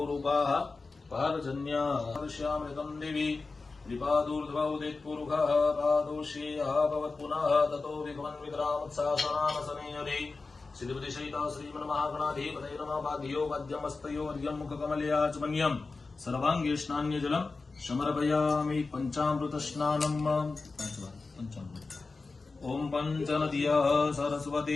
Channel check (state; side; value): quieter; right; 3.9 dB